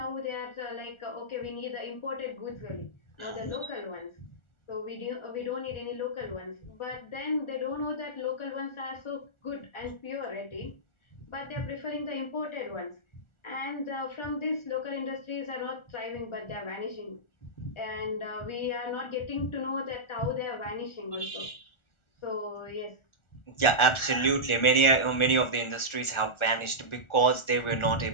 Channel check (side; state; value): right; late; 1.4 ms